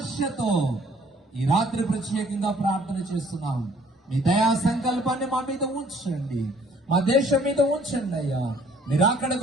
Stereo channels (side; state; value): both; normal; correlation 0.59